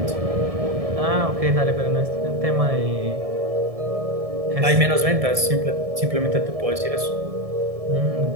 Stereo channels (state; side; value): late; left; 1.7 ms